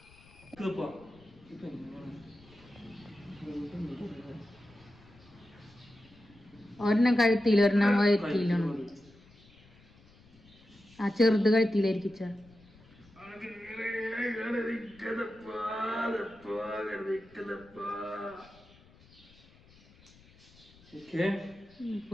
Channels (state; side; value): noise; left; rumble, 26 dB below the sound